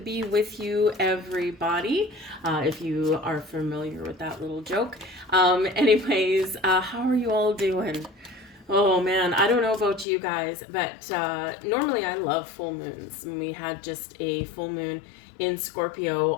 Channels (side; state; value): right; drops out; at 10.1 s